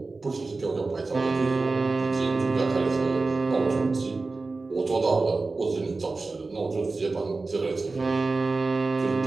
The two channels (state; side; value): quieter; left; 3.7 dB